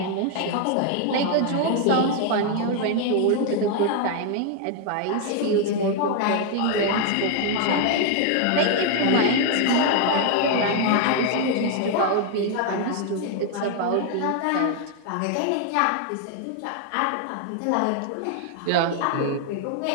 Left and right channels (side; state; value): both; different; correlation 0.00